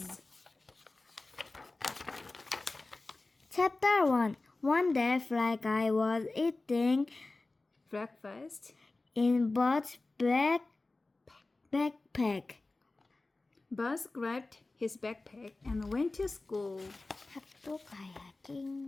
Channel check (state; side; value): quieter; right; 3.2 dB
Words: Chapter 1. One day, FlyGuy was eating breakfast in Buzz's backpack. Buzz grabbed his backpack and went to school. 학교